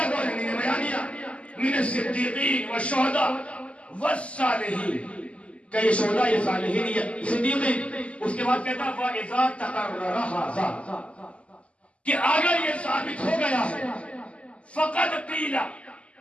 کون ہے، من بیانیہ من الصدیقین والشہداء والصالحین، کہ یہ شہداء یہ صالحین یہ صدیقین۔ اس کے بعد کہتا فَإِذَا تَقَرَّرَ هَذَا، کہ اگر یہ ثابت ہو گیا ہے فقد قیل،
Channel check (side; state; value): right; late; 0.061 ms